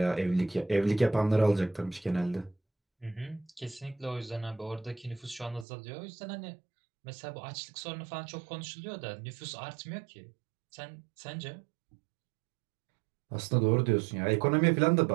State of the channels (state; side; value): drops out; left; at 5.7 s